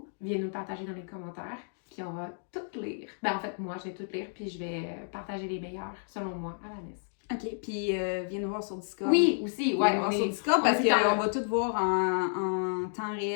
viens nous partager dans les commentaires, puis on va tout lire. Ben en fait, moi, je vais tout lire, puis je vais partager les meilleurs, selon moi, à Vanessa. OK, puis viens nous voir sur Discord. Oui, aussi, ouais. Viens nous voir sur Discord parce qu'on va tout voir en temps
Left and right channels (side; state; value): right; silent; digital silence